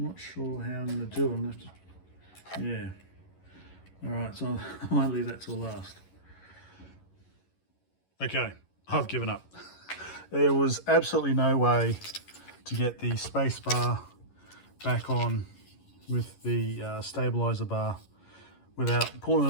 not sure how I'm going to do it. I'm going to have to, yeah. Alright, so I might leave that till last. Okay, I've given up. There was absolutely no way to get the space bar back on with the stabilizer bar without pulling it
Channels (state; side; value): late; right; 11 ms